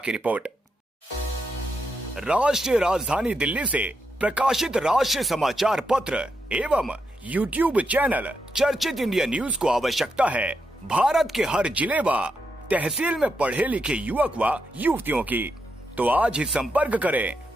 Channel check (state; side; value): normal; both; correlation 0.83